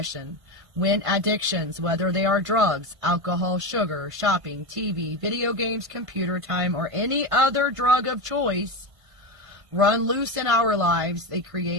When addictions, whether they are drugs, alcohol, sugar, shopping, TV, video games, computer time, or any other drug of choice, run loose in our lives, they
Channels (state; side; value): late; left; 1.5 ms